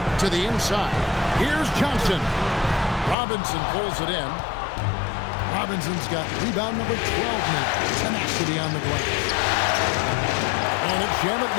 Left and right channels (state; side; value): drops out; right; at 3.2 s